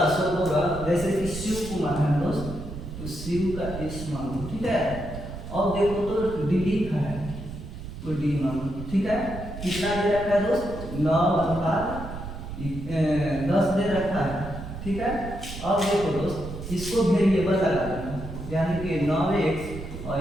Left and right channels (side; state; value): right; noise; rumble, 10 dB below the sound